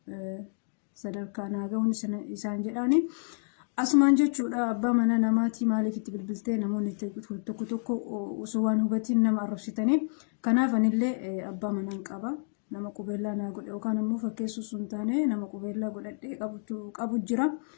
sadarkaa naa ga'uun isaan jedhaani. Asumaan jechuudha abbaa mana namaatii maaliif itti bilbiltee namoonni tokko tokko osoo waan hubatiin nama arrabsitanii. Kanaaf anillee abbaa manaan qaba. Nama qubeellaa naa godhe yookaan immoo fakkeessuu sun taane nama qubeellaa godhadhee qabu jira.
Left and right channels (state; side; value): silent; right; digital silence